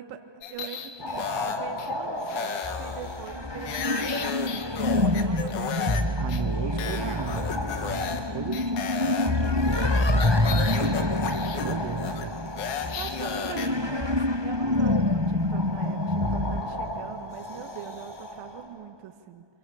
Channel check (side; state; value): left; late; 1.2 ms